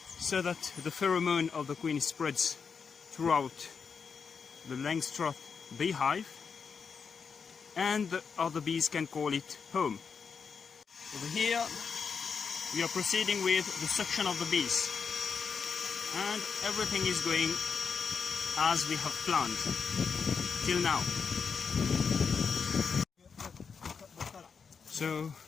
so that the pheromone of the queen spreads throughout the Langstroth beehive, and the other bees can call it home. Over here we are proceeding with the suction of the bees. And everything is going as we have planned till now. So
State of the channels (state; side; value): quieter; right; 5.9 dB